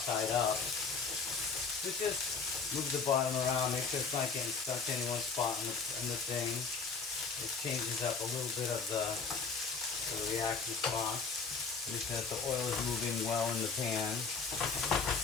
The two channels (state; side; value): quieter; right; 5.0 dB